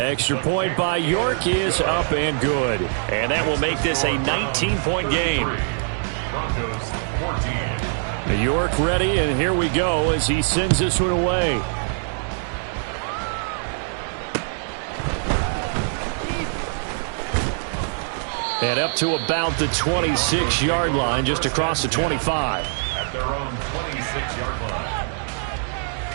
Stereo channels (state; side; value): silent; left; digital silence